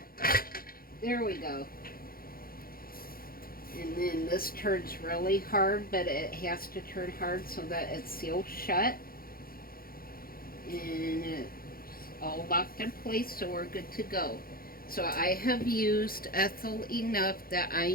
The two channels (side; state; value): right; late; 0.43 ms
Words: There we go. And then this turns really hard, but it has to turn hard so that it's sealed shut. And it's all locked in place, so we're good to go. So I have used Ethel enough that I